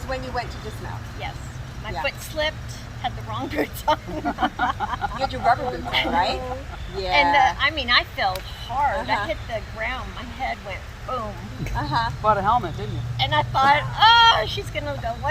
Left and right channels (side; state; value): both; identical; correlation 1.00